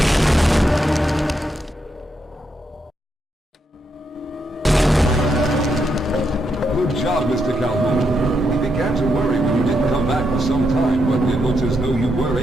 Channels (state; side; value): normal; both; correlation 0.81